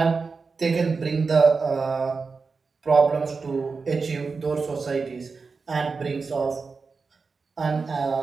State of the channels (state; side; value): quieter; left; 4.6 dB